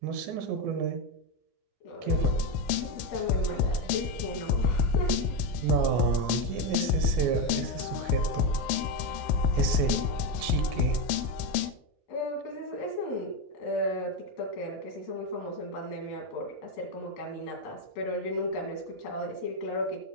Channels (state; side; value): normal; both; correlation 0.11